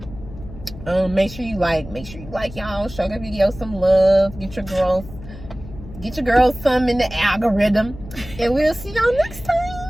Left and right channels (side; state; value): left; noise; hum, 15 dB below the sound